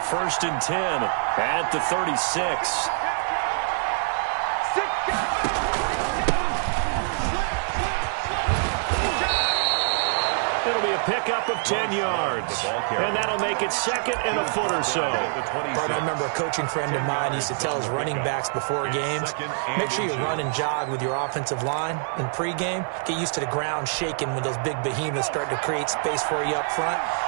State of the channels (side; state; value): left; silent; 62 dB below the other